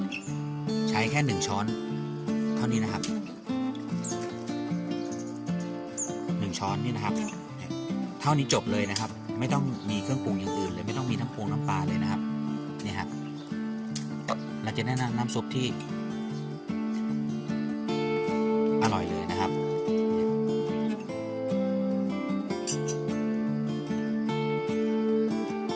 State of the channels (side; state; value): both; identical; correlation 1.00